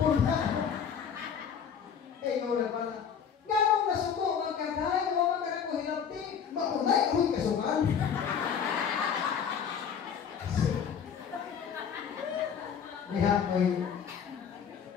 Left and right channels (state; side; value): quieter; right; 7.4 dB